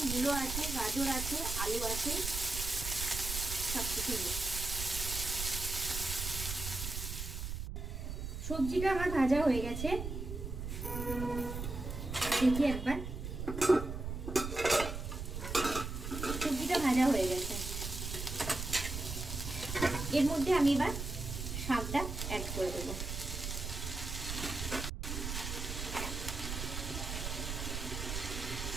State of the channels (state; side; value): noise; right; rumble, 5 dB below the sound